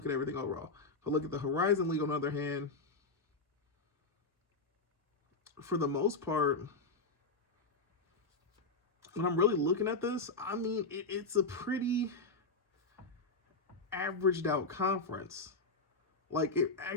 at everything overall. But look at the Horizon League, on the other hand, for the most part, when I'm really looking at this, I mean, it's a pretty averaged out conference. Like, it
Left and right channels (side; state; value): right; quieter; 3.6 dB